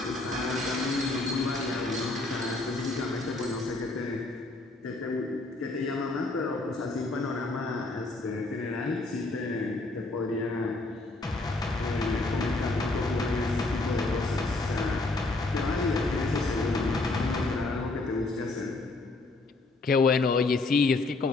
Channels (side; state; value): right; quieter; 3.2 dB